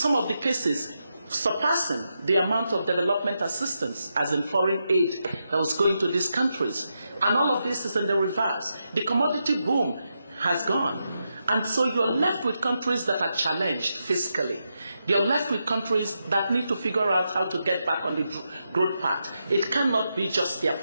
of the cases, surpassing the amount of development assistance, as in foreign aid, that was going to these countries. And all of this is in the reverse. The commodity boom has gone. And so you're left with countries that are challenged fiscally. You're left with countries that need to figure out how to get back on the growth path. It cannot be just their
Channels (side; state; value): both; inverted; correlation -0.85